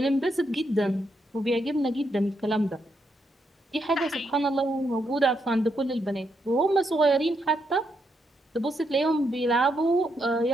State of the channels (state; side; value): normal; both; correlation 0.79